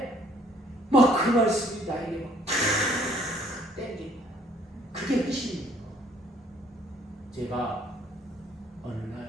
막 그 말씀이 나에게 막 땡긴다. 그게 핵심이에요. 제가 어느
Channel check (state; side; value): normal; both; correlation 0.61